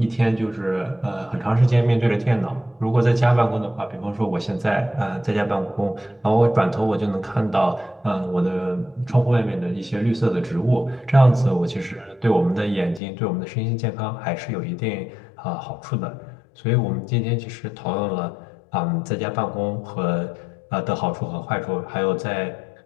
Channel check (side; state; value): right; drops out; at 13.0 s